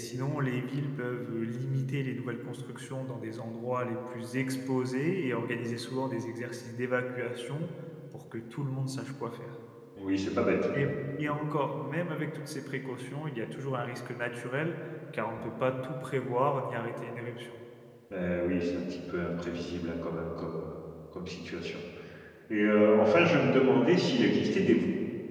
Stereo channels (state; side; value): identical; both; correlation 1.00